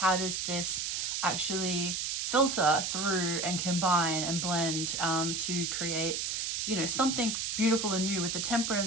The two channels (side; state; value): right; noise; hiss, 1 dB below the sound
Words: does this actually filter through and combine and blend to create, you know, something beautiful and new, with the